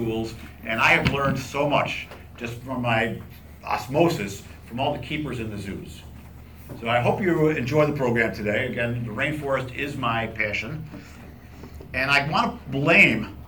And I have learned so much just from my osmosis from all the keepers in the zoos. So I hope you enjoy the program today. Again, the rainforest is my passion. And I want to blame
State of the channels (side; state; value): both; identical; correlation 1.00